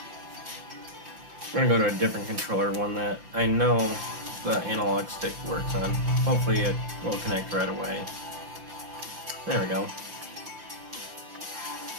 We're gonna go to a different controller, one that I know the analog stick works on. Hopefully it will connect right away. There we go.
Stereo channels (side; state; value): left; late; 5.8 ms